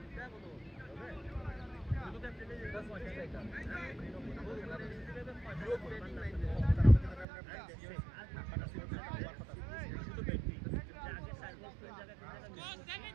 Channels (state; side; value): drops out; left; at 7.2 s